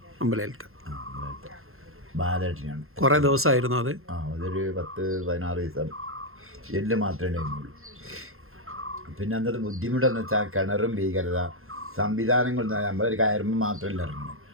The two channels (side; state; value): left; late; 0.61 ms